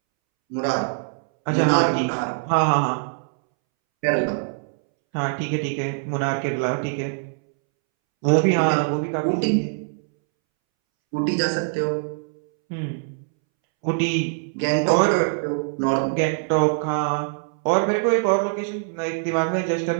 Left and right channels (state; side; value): silent; left; 63 dB below the other